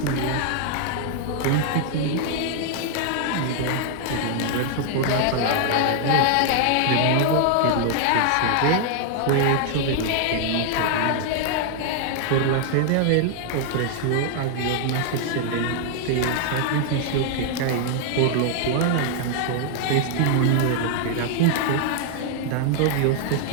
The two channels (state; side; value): different; both; correlation 0.00